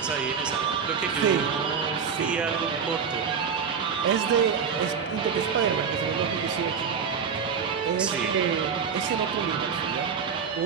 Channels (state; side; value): quieter; left; 6.5 dB